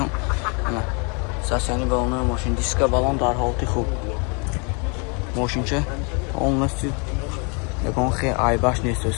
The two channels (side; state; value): right; quieter; 34.5 dB